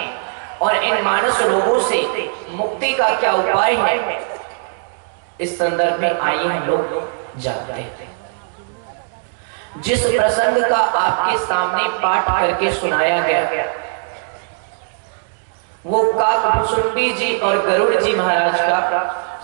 और इन मानस रोगों से मुक्ति का क्या उपाय है, इस संदर्भ में आइए हम लोग जानते हैं। जिस प्रसंग का आपके सामने पाठ करके सुनाया गया, वो काकभुसुंडी जी और गरुड़ जी महाराज का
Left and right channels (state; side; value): silent; left; digital silence